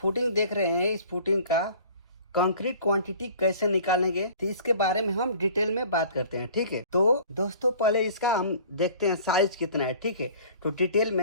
फुटिंग देख रहे हैं, इस फुटिंग का कंक्रीट क्वांटिटी कैसे निकालेंगे, तो इसके बारे में हम डिटेल में बात करते हैं। ठीक है, तो दोस्तों पहले इसका हम देखते हैं साइज कितना है। ठीक है, तो डिटेल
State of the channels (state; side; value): inverted; both; correlation -0.48